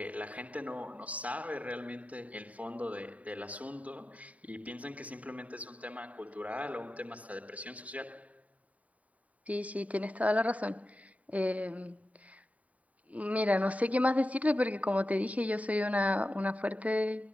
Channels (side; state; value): left; late; 0.069 ms